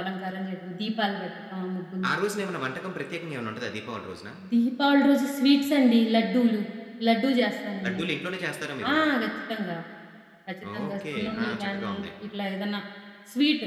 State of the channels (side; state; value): both; identical; correlation 1.00